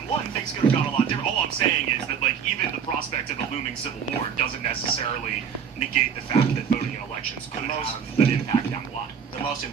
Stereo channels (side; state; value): left; quieter; 7.2 dB